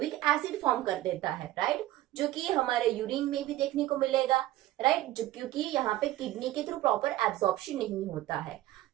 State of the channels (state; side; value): quieter; left; 15.3 dB